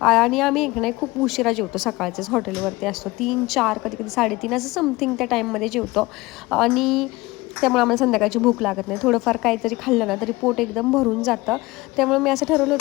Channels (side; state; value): right; quieter; 21.1 dB